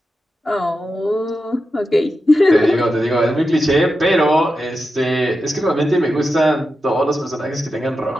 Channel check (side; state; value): both; normal; correlation 0.90